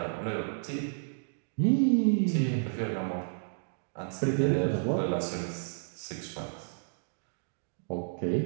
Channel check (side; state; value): left; silent; digital silence